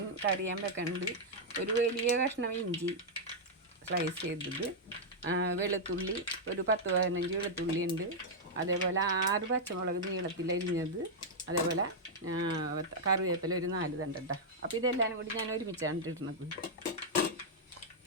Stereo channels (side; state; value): both; normal; correlation -0.05